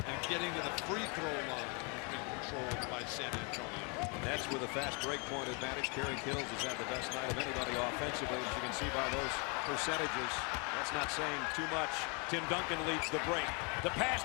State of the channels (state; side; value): quieter; right; 33.9 dB